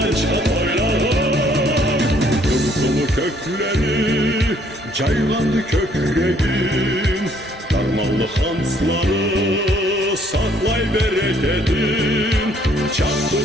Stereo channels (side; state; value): both; normal; correlation 0.64